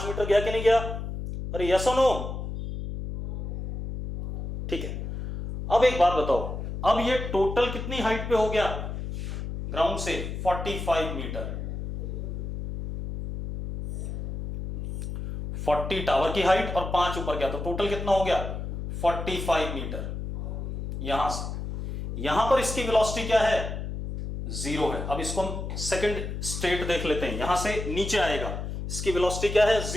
मीटर गया कि नहीं गया? अरे यस और नो? ठीक है, अब एक बात बताओ, अब ये टोटल कितनी हाइट पे हो गया ग्राउंड से 45 मीटर, 40 टावर की हाइट और 5 ऊपर गया, तो टोटल कितना हो गया 45 मीटर। यहां से यहां पर इसकी वेलोसिटी क्या है, 0 है। अब इसको हम सेकंड स्टेट देख लेते हैं, यहां से नीचे आएगा, इसकी वेलोसिटी क्या है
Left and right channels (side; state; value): left; noise; hum, 5 dB below the sound